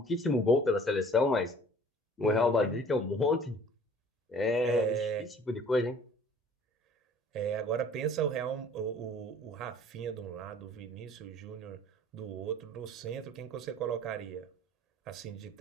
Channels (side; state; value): both; normal; correlation 0.51